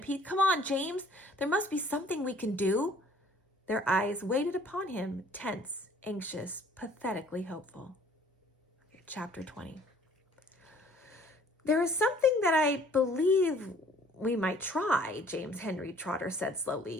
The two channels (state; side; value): normal; both; correlation 0.56